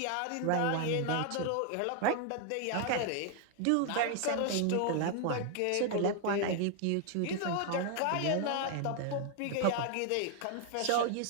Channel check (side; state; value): both; different; correlation 0.00